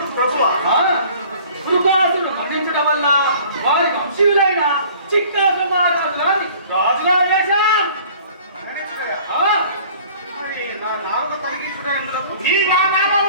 ప్రభువా? శృగాసురుడు మరణించడం వల్ల వారి వంశీయులైన చిత్రాసుర మహారాజు గారిని రాజుగా వేశాం. మరణించుటయా? ఆ, మరి నా నాలుగు తొలగించుట ఎందులకు? ఈ నా నామం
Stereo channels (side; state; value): both; inverted; correlation -0.50